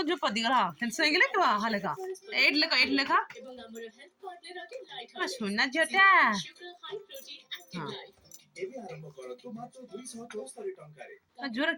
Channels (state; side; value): identical; both; correlation 1.00